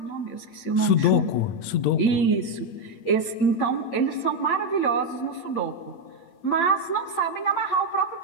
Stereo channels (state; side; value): late; right; 8.8 ms